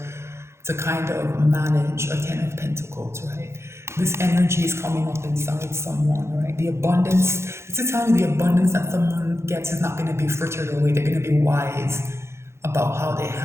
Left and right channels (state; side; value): late; left; 0.13 ms